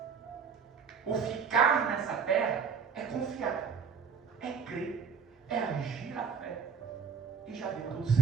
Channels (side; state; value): left; quieter; 6.3 dB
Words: O ficar nessa terra é confiar, é crer, é agir a fé. E já deu tudo